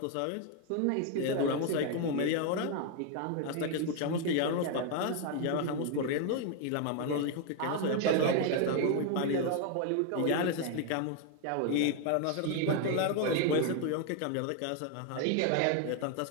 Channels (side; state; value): both; different; correlation 0.01